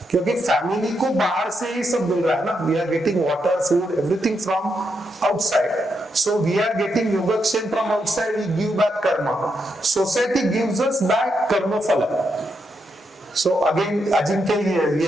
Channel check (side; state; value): both; normal; correlation 0.82